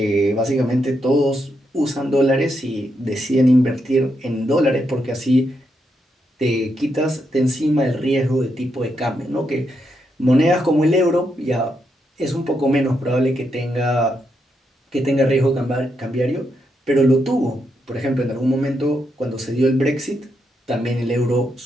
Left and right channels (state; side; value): normal; both; correlation 0.81